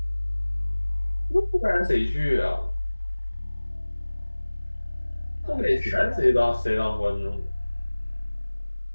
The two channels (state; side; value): inverted; both; correlation -1.00